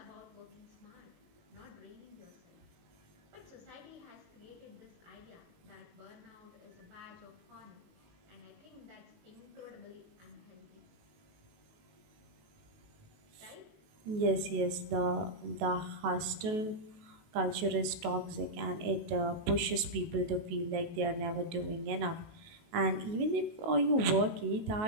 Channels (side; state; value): left; late; 19 ms